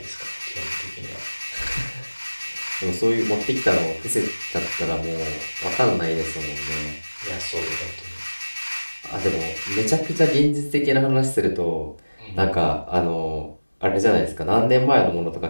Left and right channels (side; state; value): both; inverted; correlation -1.00